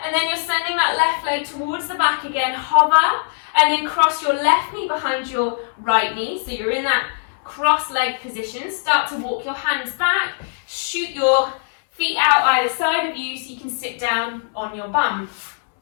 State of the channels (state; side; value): silent; right; 65 dB below the other